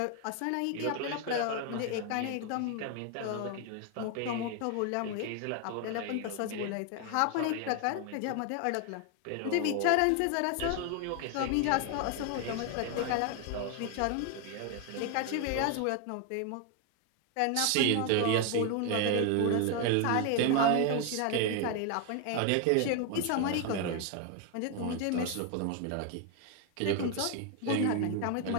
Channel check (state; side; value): different; both; correlation 0.01